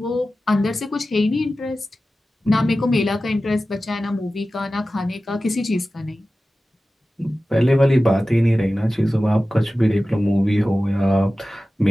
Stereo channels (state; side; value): normal; both; correlation 0.95